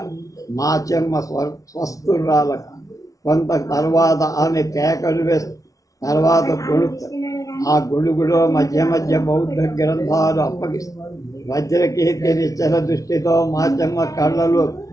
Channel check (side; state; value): right; late; 0.17 ms